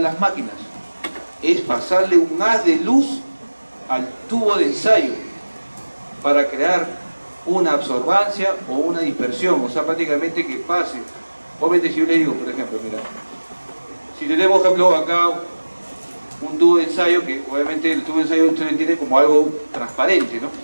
las máquinas. Es pasarle un haz de luz al tubo de ensayo para crear una absorbancia o una dispersión, o sea, prácticamente que pase. Obviamente si yo le digo, por ejemplo, mira, si tenemos, por ejemplo, acá un tubo de ensayo, que obviamente el tubo de ensayo usted lo entiende como algo transparente, ¿no?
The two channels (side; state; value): both; inverted; correlation -1.00